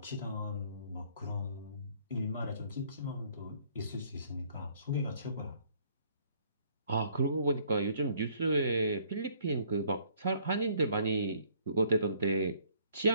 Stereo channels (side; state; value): both; inverted; correlation -0.62